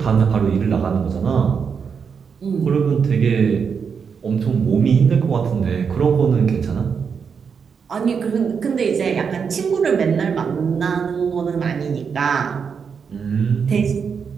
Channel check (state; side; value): quieter; left; 6.3 dB